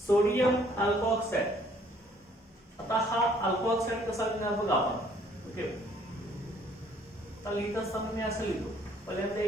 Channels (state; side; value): normal; both; correlation 0.61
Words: सोडियम अल्कोऑक्साइड. आता हा अल्कोऑक्साइड कसा लिहिणार बघा आपण. ओके, तर लिहित असताना मी असं लिहितो, पहिल्यांदा